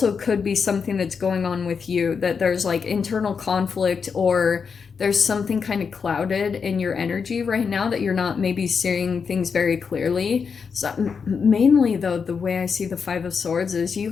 could be something that's going on with you, that there's like internal conflict, or there's something kind of clouded in your energy right now that you're not maybe seeing things very clearly. So mainly though, the way I see the Five of Swords is you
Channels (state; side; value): quieter; right; 5.9 dB